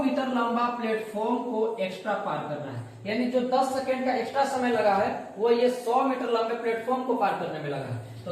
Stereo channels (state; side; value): identical; both; correlation 1.00